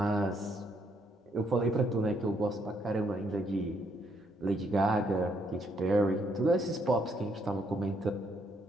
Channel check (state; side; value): normal; both; correlation 0.72